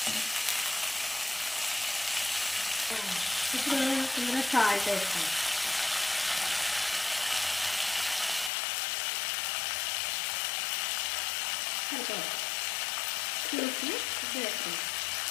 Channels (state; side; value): drops out; right; at 8.5 s